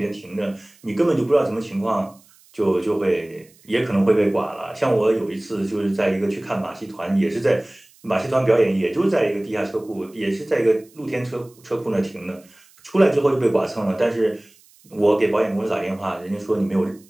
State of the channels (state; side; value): noise; right; hiss, 29 dB below the sound